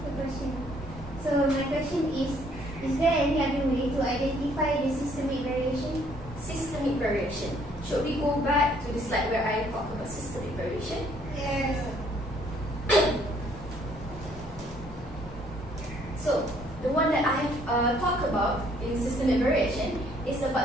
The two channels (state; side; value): normal; both; correlation 0.64